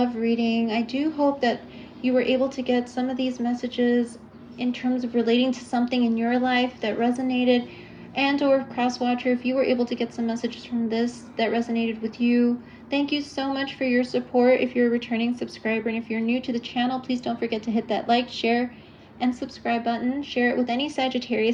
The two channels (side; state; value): both; identical; correlation 1.00